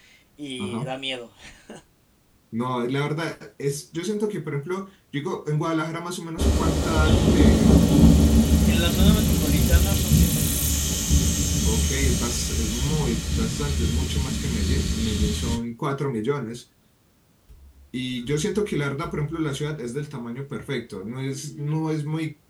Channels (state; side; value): identical; both; correlation 1.00